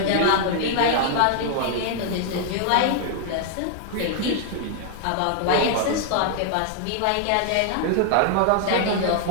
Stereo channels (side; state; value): both; different; correlation 0.00